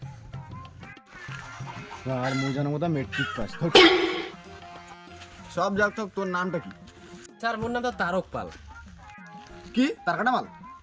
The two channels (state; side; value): identical; both; correlation 1.00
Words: আর মোজানো মতো মেট্রিক পাস। সব যাক তো তোর নামটা কি? স্যার মোর নাম তো তারক পাল। কি তার কাটা মাল?